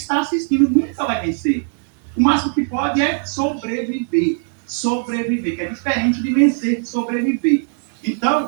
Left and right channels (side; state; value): left; silent; 60 dB below the other